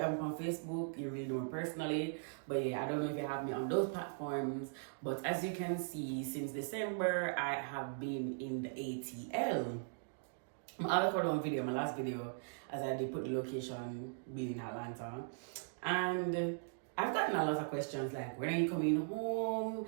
me on Facebook, you really know me personally. But yeah, I don't know if you have me on those platforms. But as you can see, since December, I have been in the ATL. I'll record one video, my last video, as I did put the location being in Atlanta. And I've gotten a lot of questions like, when are you coming home?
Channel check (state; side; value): silent; left; digital silence